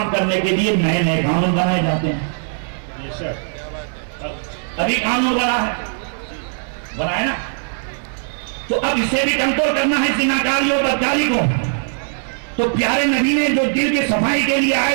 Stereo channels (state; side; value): silent; left; digital silence